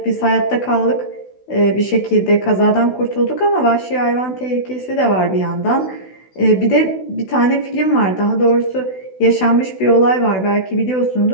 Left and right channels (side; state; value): right; late; 16 ms